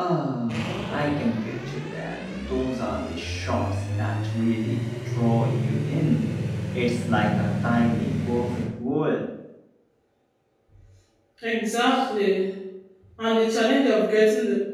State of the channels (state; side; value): identical; both; correlation 1.00